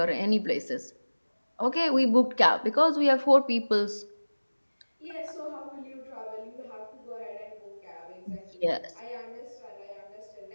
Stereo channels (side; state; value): both; inverted; correlation -1.00